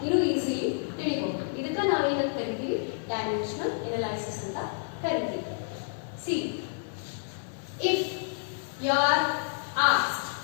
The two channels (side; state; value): right; silent; 58 dB below the other